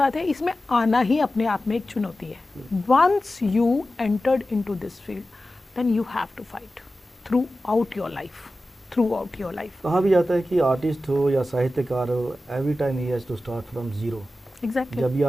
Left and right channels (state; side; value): normal; both; correlation 0.94